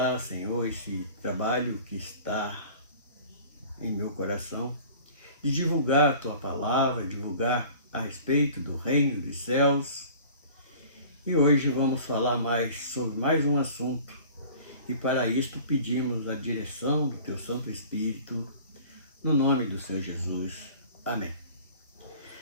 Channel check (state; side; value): inverted; both; correlation -0.45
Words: Senhor, esse trabalho que está em meu coração, de divulgar a Tua palavra, divulgar a respeito do reino dos céus. E hoje vamos falar mais sobre mais um assunto. E para isto pedimos a direção do Teu Santo Espírito, no nome do Senhor Jesus. Amém.